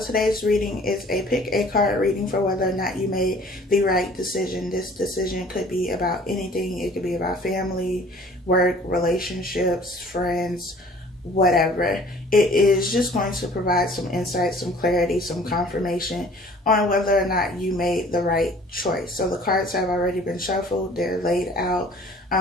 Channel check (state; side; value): normal; both; correlation 0.52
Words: reading is a pick a card reading for whether or not you made the right decision. This decision could be about anything. It could be about family, work, relationships, friends, whatever. It is just going to provide some insight, some clarity, some confirmation on whether or not you made the right choice. So the cards have already been shuffled. They're laid out.